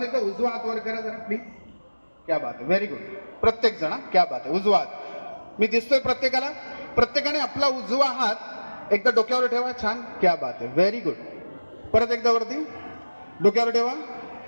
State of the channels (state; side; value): inverted; both; correlation -1.00